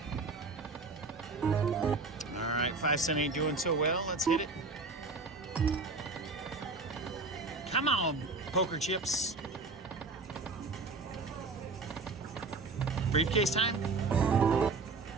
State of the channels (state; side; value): quieter; left; 3.8 dB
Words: All right, 5 cent ain't doing so well. Let's hit it. Come on, poker chips. Briefcase time?